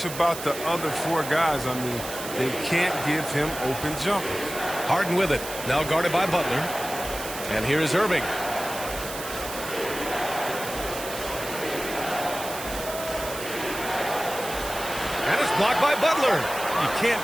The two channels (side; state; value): right; noise; hiss, 9 dB below the sound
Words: about the other 4 guys. I mean, they can't give him open jumpers. Harden with it. Now guarded by Butler. And here is Irving. And it's blocked by Butler. You can't